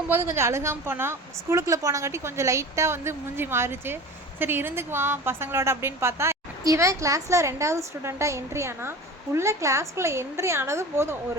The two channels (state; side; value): normal; both; correlation 0.35